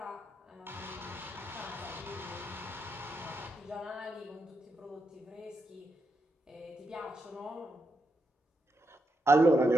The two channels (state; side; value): normal; both; correlation 0.83